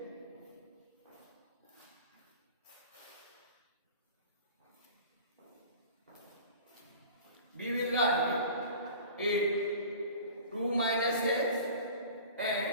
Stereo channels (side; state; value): both; inverted; correlation -0.41